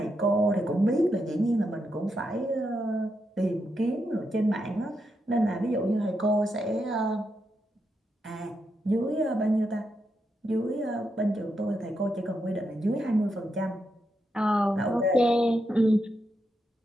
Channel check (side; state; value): both; normal; correlation 0.83